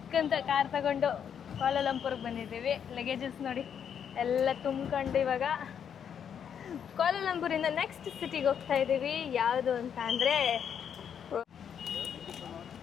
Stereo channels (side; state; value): right; quieter; 8.1 dB